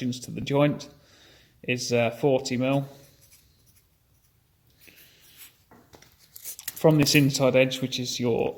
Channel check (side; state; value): both; identical; correlation 1.00